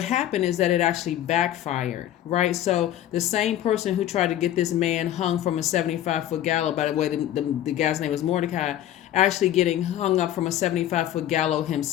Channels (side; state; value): right; quieter; 12.2 dB